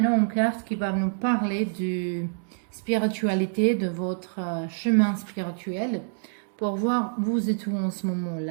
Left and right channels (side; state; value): left; silent; digital silence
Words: une carte qui va nous parler de spiritualité, de votre chemin spirituel, pour voir vous êtes où en ce